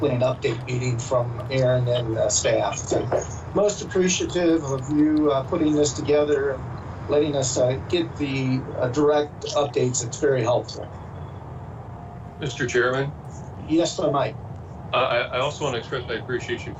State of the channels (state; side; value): identical; both; correlation 1.00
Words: an update meeting from Aaron and staff. So most appreciative of you putting this together and letting us get the direct updates. It's very helpful. Mr. Chairman? Yes, sir, Mike. I also want to express my appreciation